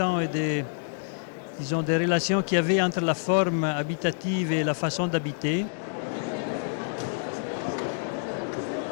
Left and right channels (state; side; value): silent; right; digital silence